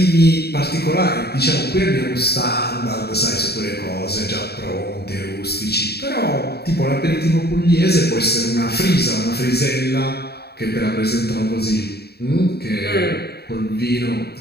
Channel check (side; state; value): right; late; 0.47 ms